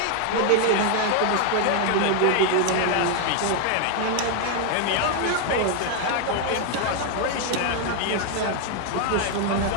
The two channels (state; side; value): different; both; correlation 0.00